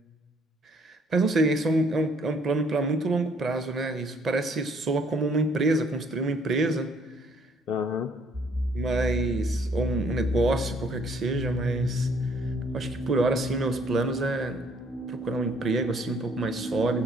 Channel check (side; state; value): both; normal; correlation 0.63